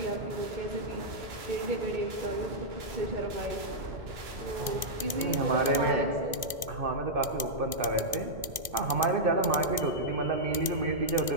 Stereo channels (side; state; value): left; late; 1.4 ms